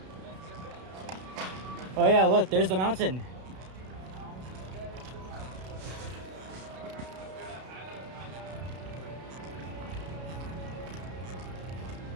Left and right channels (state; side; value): late; left; 32 ms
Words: Oh yeah, look, there's the mountain.